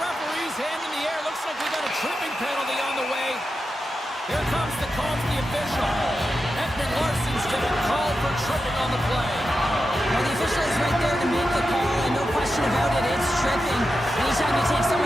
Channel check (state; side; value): normal; both; correlation 0.89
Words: hand in the air. Looks like we got a tripping penalty on the way. Here comes the call from the official. Edmund Larson's getting called for tripping on the play. Well, the official is right there to make the call, and no question about it, it's tripping. Anytime you take